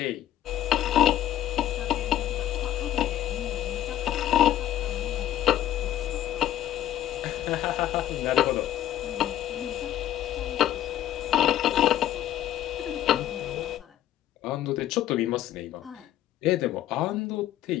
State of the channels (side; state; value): right; quieter; 12.3 dB